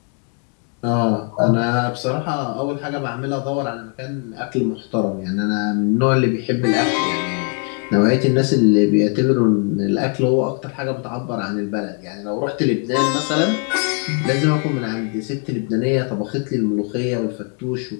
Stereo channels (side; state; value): right; quieter; 38.9 dB